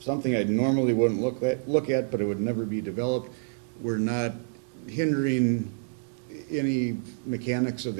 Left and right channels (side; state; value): left; silent; digital silence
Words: I normally wouldn't look at, but it would never be developed. We're not hindering any mechanics of